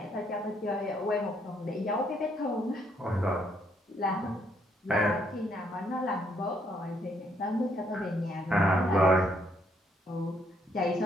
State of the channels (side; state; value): both; normal; correlation 0.71